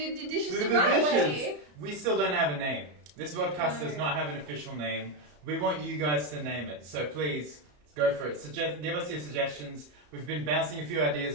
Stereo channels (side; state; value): left; late; 34 ms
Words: the dishes the the right dishes. way. We still don't have a name. This podcast does not have an official name. We want you guys to name it, so please go for it. Give us your suggestions. We've been bouncing a few